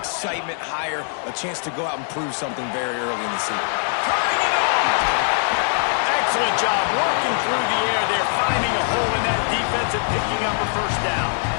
higher, a chance to go out and prove something very early in the season. Turning it on! Excellent job working through the air there, finding a hole in that defense and picking up a first down.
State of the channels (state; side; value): silent; right; 58 dB below the other